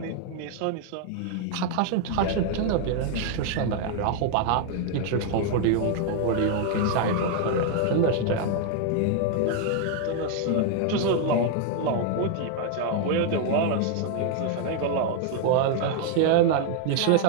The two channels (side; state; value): both; different; correlation 0.00